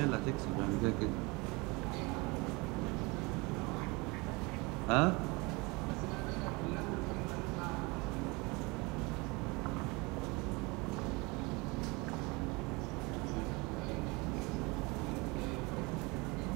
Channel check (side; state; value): left; quieter; 26.2 dB